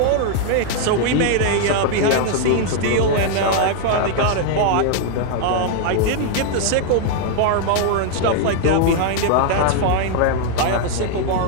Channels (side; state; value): both; different; correlation 0.00